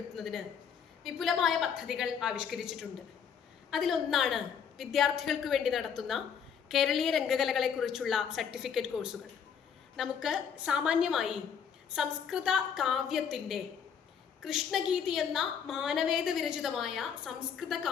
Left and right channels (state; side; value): quieter; right; 7.4 dB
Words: വിപുലമായ പദ്ധതികൾ ആവിഷ്കരിച്ചിട്ടുണ്ട്. അതിലൊന്നാണ് വിദ്യാർത്ഥികൾക്ക് വേണ്ടി നടത്തുന്ന കേരളീയ രംഗകലകളെക്കുറിച്ചുള്ള സർട്ടിഫിക്കറ്റ് കോഴ്സുകൾ. നമുക്ക് സാമാന്യമായി സംസ്കൃത കാവ്യത്തിൻ്റെ കൃഷ്ണഗീതി എന്ന മാനവേദ വിരചിതമായ സംസ്കൃത